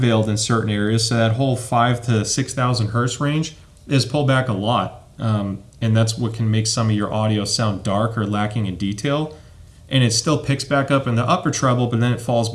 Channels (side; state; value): both; identical; correlation 1.00